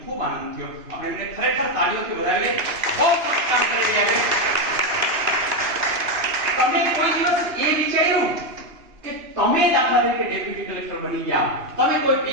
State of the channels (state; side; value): late; left; 2.9 ms